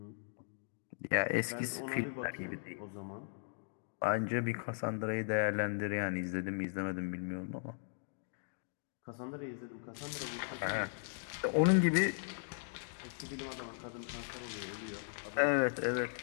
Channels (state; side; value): silent; right; digital silence